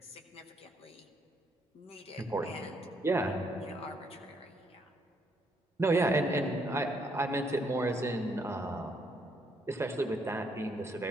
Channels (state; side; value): normal; both; correlation 0.72